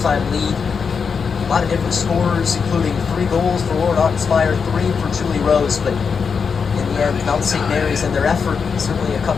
lead. A lot of different scores, including 3 goals for Lauren Ottenspire, 3 for Julie Rose, but in the end, Mount St. Mary's and their effort, certainly a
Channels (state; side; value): quieter; right; 5.9 dB